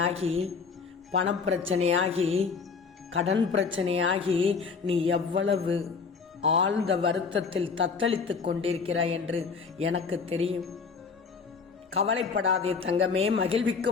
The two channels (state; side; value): quieter; right; 5.2 dB